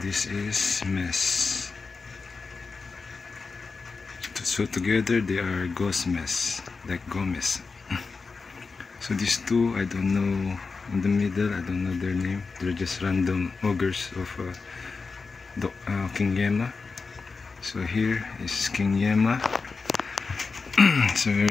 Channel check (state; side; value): quieter; right; 4.5 dB